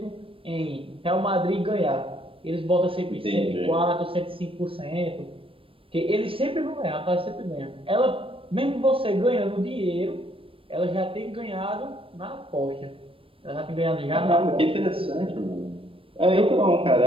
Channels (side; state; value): left; late; 0.26 ms